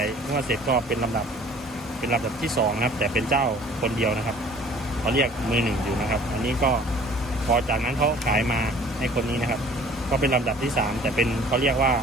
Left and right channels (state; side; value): normal; both; correlation 0.50